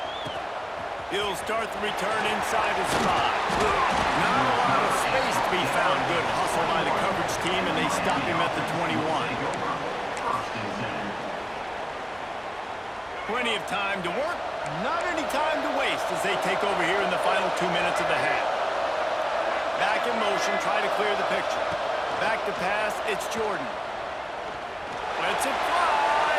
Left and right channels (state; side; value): identical; both; correlation 1.00